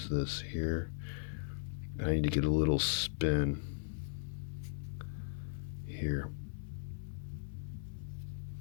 this here. I need to get a little spin here.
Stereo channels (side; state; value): right; silent; digital silence